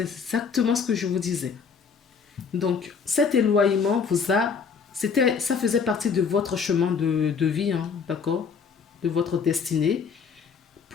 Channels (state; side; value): quieter; right; 5.9 dB